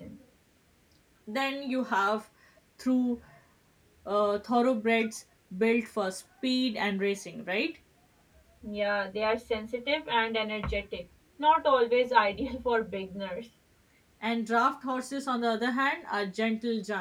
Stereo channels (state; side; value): identical; both; correlation 1.00